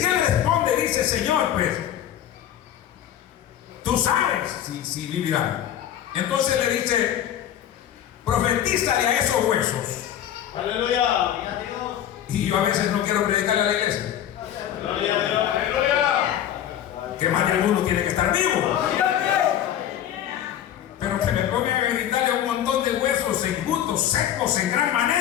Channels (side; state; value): right; quieter; 10.9 dB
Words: responde, dice: Señor, pues tú sabes si vivirán. Entonces le dice: profetízale a esos huesos. Aleluya. Y yo a veces no quiero predicarle a la iglesia, que más de algunos tienen que estar vivos, pero que me pongan a gritarle a un montón de huesos enjutos, secos en gran